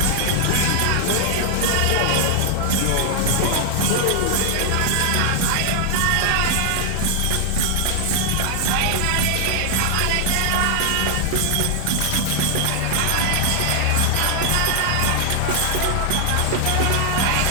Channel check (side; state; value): both; different; correlation 0.00